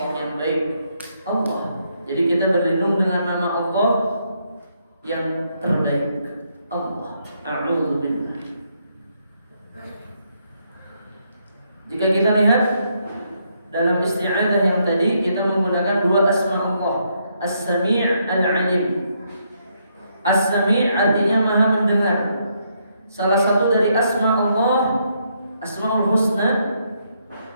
yang baik, Allah. Jadi kita berlindung dengan nama Allah yang terbaik, Allah. A'udzubillah. Jika kita lihat dalam isti'adzah yang tadi, kita menggunakan dua asma Allah, As-Sami' Al-Alim. As-Sami' artinya maha mendengar. Salah satu dari asma Allah, Asmaul Husna,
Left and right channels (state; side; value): inverted; both; correlation -0.75